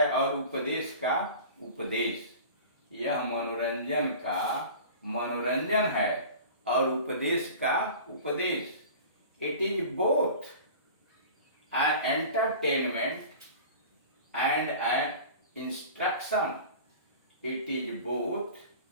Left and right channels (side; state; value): both; inverted; correlation -0.39